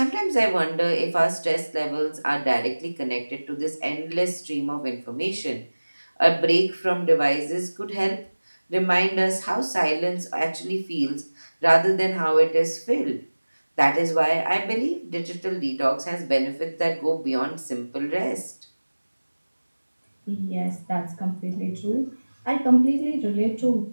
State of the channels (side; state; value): both; inverted; correlation -1.00